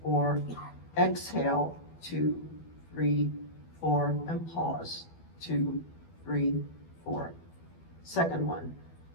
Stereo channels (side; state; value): right; late; 12 ms